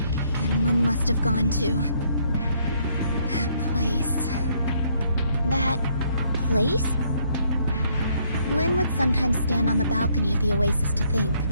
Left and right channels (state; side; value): inverted; both; correlation -0.69